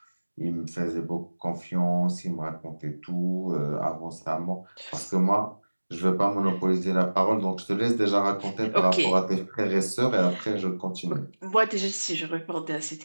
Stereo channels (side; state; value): both; inverted; correlation -1.00